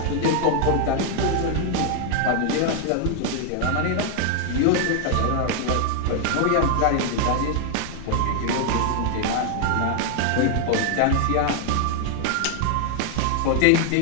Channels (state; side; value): different; both; correlation 0.00